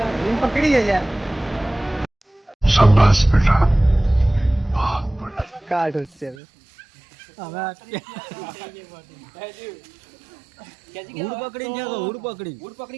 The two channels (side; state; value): left; drops out; at 6.4 s